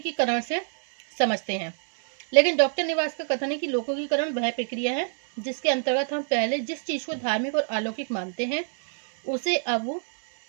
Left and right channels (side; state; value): left; silent; digital silence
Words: से समझते हैं, लेकिन डॉक्टर निवास का कथन है कि लोकोकीकरण वह प्रक्रिया है जिसके अंतर्गत हम पहले जिस चीज को धार्मिक और अलौकिक मानते हैं उसे अब